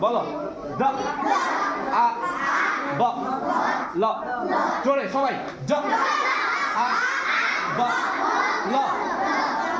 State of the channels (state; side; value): identical; both; correlation 1.00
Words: দ আ ব ল জোরে সবাই জ আ ব ল